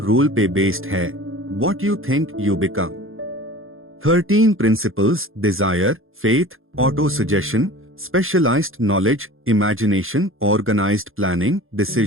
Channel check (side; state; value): left; late; 0.60 ms